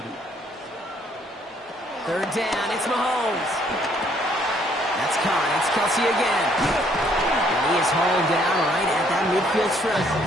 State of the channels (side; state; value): both; normal; correlation 0.65